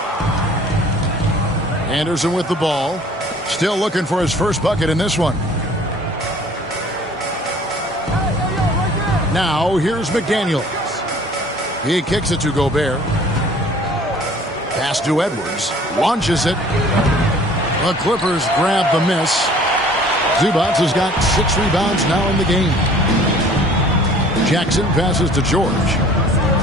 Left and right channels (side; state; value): both; normal; correlation 0.51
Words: Anderson with the ball. Still looking for his first bucket in this one. Now, here's McDaniels. He kicks it to Gobert. Pass to Edwards. Launches it. The Clippers grab the miss. Zubac has got 6 rebounds now in the game. Jackson passes to George.